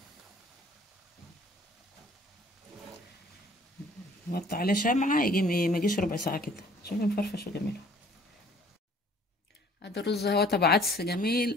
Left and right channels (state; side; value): normal; both; correlation 0.55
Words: نوطي عليه شمعه يجي ما يجيش ربع ساعه كده. شوفي مفرفش وجميل. هذا الرز اهو تبع عدس جميل،